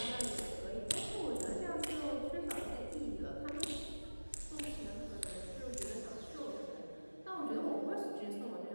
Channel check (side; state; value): both; inverted; correlation -1.00